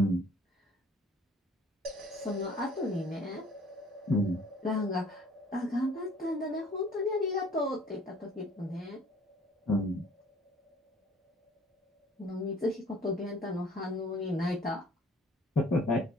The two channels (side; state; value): both; normal; correlation 0.54